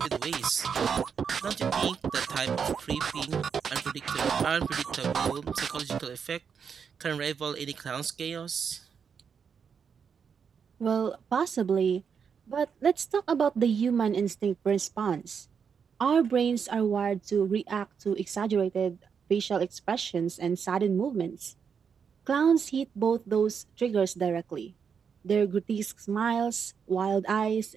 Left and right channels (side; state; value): left; quieter; 6.7 dB